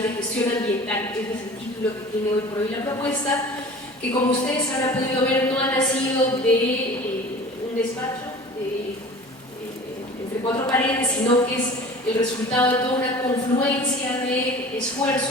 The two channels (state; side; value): normal; both; correlation 0.41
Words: de Gestión Ambiental. Ese es el título que tiene hoy por hoy la propuesta, que como ustedes habrán podido ver no ha nacido de un despacho entre cuatro paredes, sino que es el resultado de toda una confluencia de